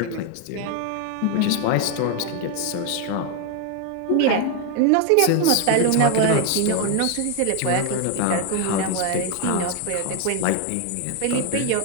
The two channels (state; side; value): different; both; correlation 0.01